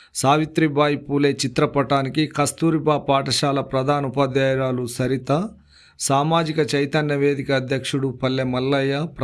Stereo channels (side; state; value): both; identical; correlation 1.00